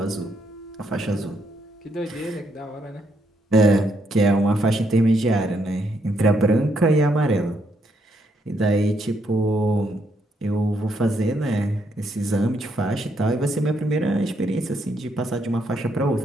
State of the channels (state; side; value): normal; both; correlation 0.75